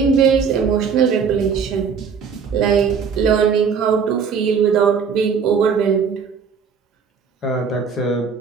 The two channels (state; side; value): quieter; left; 6.2 dB